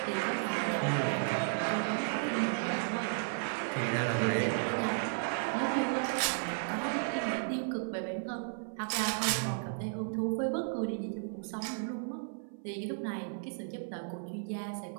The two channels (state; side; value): silent; left; 55 dB below the other